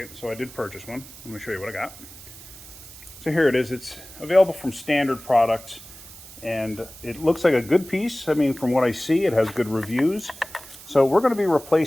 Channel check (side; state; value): right; noise; hiss, 18 dB below the sound